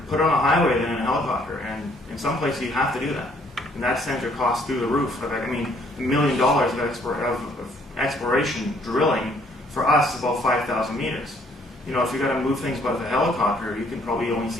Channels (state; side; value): normal; both; correlation 0.64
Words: put it on a highway than in a helicopter. And in some places, you have to do that. And that sends your costs through the roof. I mean, $1 million of exploration drilling for us is about 5,000 meters. You know, if you're going to move things by the helicopter, you can probably only